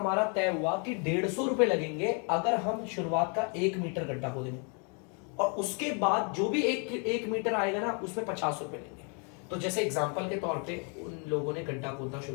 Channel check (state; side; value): quieter; right; 37.8 dB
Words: तय हुआ कि 150 रुपए लगेंगे अगर हम शुरुआत का 1 मीटर गड्ढा खोदेंगे, और उसके बाद जो भी एक मीटर आएगा ना उसमें 50 रुपए लेंगे। तो जैसे एग्जांपल के तौर पे उन लोगों ने गड्ढा खोदना